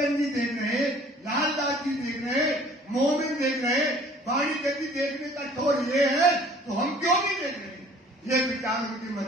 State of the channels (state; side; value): normal; both; correlation 0.53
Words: जी देख रहे, लालदास जी देख रहे, मोमिन देख रहे, वाणी गति देखने का छोर ये है, तो हम क्यों नहीं देख रहे। ये विचार उनके मन